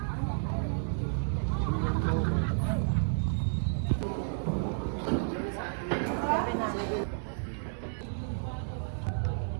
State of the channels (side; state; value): left; silent; digital silence